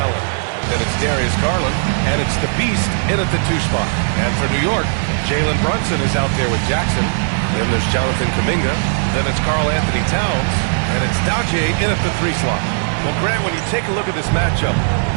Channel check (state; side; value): silent; left; 66 dB below the other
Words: Then it's Darius Garland, and it's the Beast in at the 2 spot. And for New York, Jalen Brunson is out there with Jackson. Then there's Jonathan Kuminga. Then it's Karl Anthony Towns. And it's Daje in at the 3 slot. Well, Grant, when you take a look at this matchup,